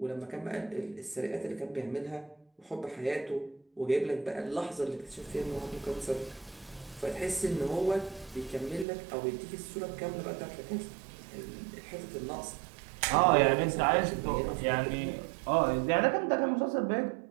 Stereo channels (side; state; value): left; drops out; at 8.8 s